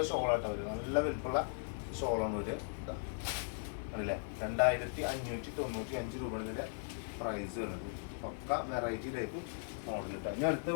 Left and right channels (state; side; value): silent; right; digital silence